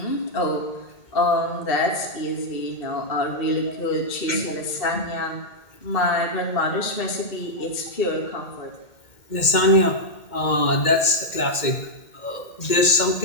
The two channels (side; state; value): right; late; 2.1 ms